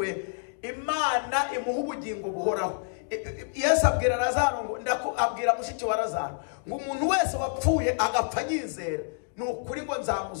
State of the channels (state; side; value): silent; right; digital silence